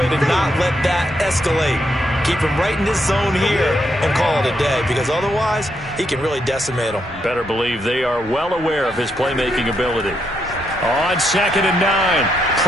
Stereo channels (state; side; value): normal; both; correlation 0.79